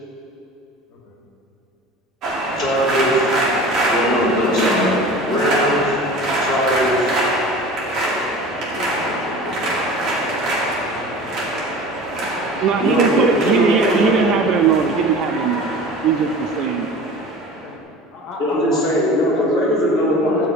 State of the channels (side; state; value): both; normal; correlation 0.38